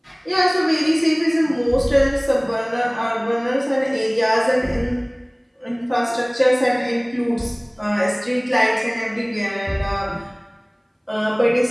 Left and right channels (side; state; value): both; identical; correlation 1.00